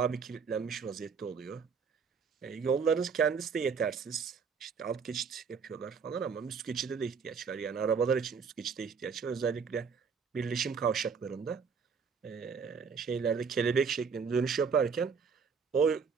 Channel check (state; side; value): quieter; left; 5.9 dB